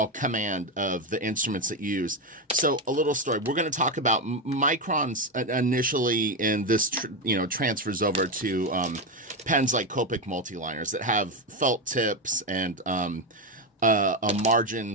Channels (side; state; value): both; normal; correlation 0.11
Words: command of the instruments that you use. So a little story. We're going to talk about Microns initially, and this transfers over to pens like Copic Multiliners that have felt tips and a margin